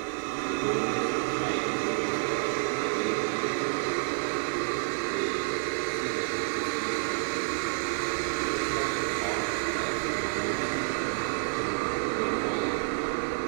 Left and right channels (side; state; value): left; silent; digital silence